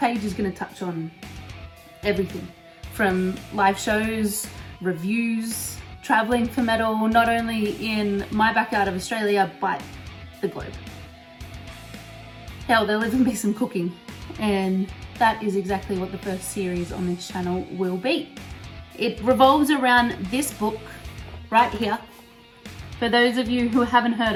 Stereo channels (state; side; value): identical; both; correlation 1.00